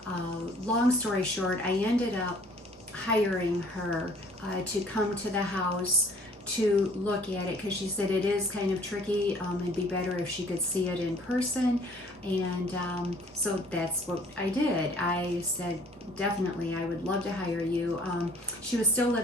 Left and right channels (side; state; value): both; normal; correlation 0.55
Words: Long story short, I ended up hiring her to come to the house to look at it, because she said it is kind of tricky. It'd be better if she could see it in person. And so that's what I did. I said, definitely, I would love to hire you. She was still